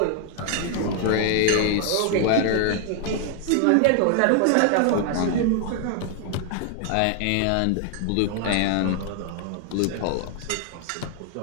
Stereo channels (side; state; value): both; different; correlation 0.00